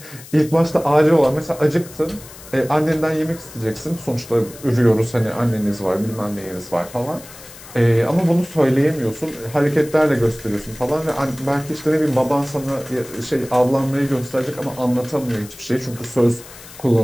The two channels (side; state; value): left; noise; hiss, 18 dB below the sound